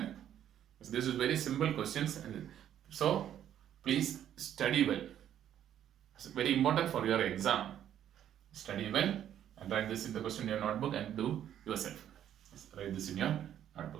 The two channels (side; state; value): left; quieter; 10.5 dB